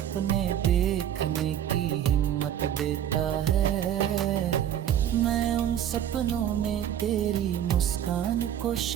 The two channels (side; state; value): left; quieter; 10.4 dB